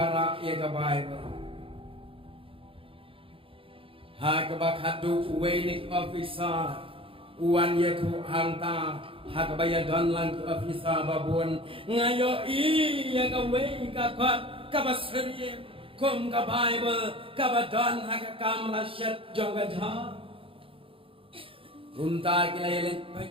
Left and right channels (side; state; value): left; late; 0.26 ms